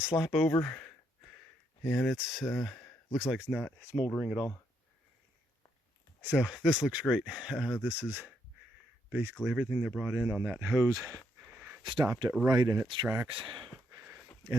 over, and it's looks like it's not smoldering at all. So this looks great. This is basically everything they brought in on that hose. Stopped it right in its tracks.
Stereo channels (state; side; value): normal; both; correlation 0.76